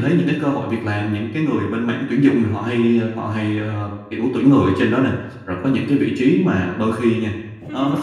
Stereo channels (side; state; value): both; identical; correlation 1.00